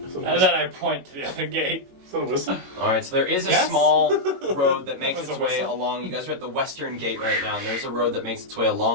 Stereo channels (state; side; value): late; left; 22 ms